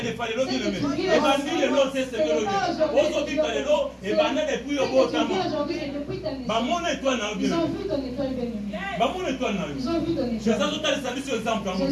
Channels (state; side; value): identical; both; correlation 1.00